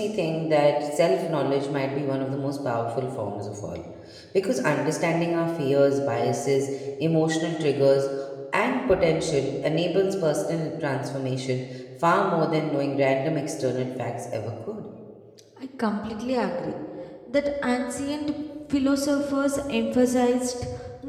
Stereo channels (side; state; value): both; identical; correlation 1.00